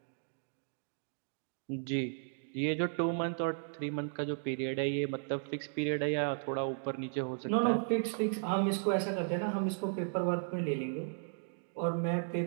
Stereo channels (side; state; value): left; silent; digital silence